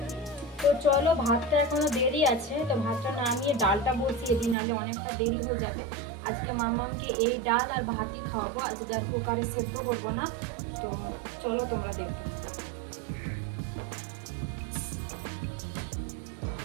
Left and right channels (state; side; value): drops out; left; at 4.5 s